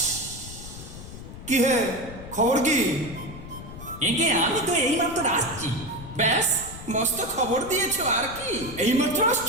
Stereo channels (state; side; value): noise; left; rumble, 13 dB below the sound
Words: কি হে, খবর কি? একে আমি তো এইমাত্র আসছি। ব্যাস, মস্ত খবর দিয়েছো আর কি। এইমাত্র